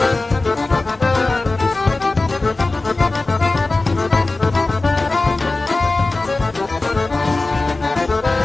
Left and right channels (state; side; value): quieter; right; 3.2 dB